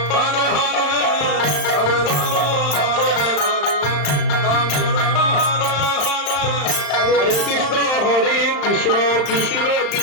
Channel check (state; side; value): late; right; 35 ms